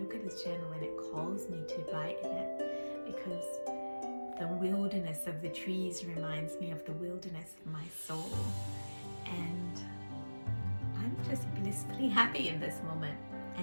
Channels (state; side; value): inverted; both; correlation -1.00